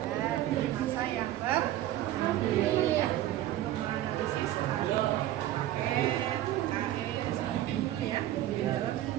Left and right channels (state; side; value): quieter; left; 13.7 dB